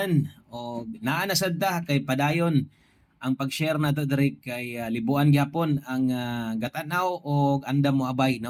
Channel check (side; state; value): both; identical; correlation 1.00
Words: O naa na sadta kay padayon ang pag-share nato diri kay libuan gyapon ang gatanaw og andam mo abay